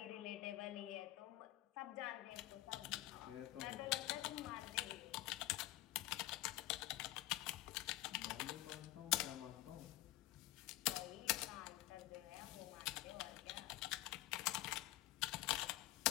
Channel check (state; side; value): quieter; right; 17.2 dB